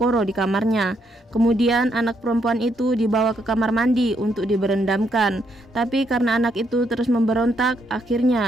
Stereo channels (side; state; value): both; normal; correlation 0.75